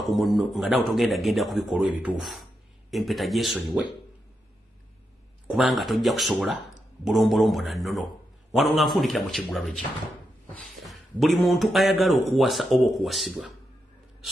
ku munno nga naawe togenda kubikolwa ebituufu. Empeta gyesonyiwe kubanga tojja kusobola bulombolombo na nnono. Wano nga nfundikira mu kiggulalo kye. Buli muntu ayagala okuwasa oba okuwasibwa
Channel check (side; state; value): both; normal; correlation 0.85